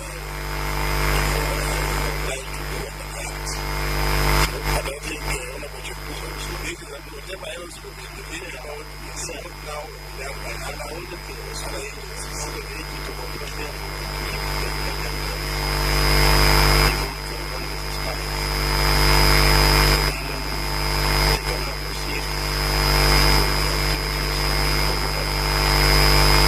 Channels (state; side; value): identical; both; correlation 1.00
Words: obliged to do under the Act. So, and I think, Honorable Cheptumo, this is whatever else we may be thinking about is what now will be done by other agencies. Okay, the AG to confirm, therefore, that if they file their returns before 21 days expires, then they can now proceed with the activities in the normal manner.